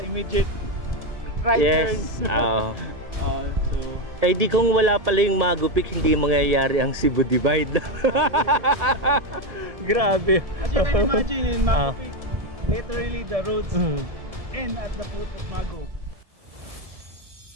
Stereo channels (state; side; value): late; left; 1.7 ms